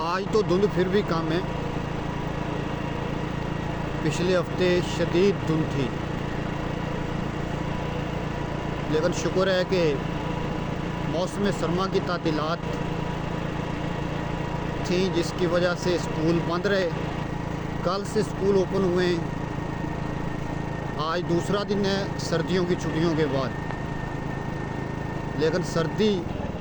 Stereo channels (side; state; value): both; identical; correlation 1.00